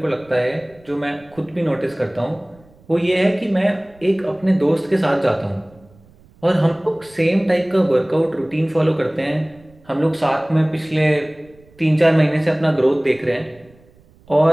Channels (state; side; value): noise; right; rumble, 28 dB below the sound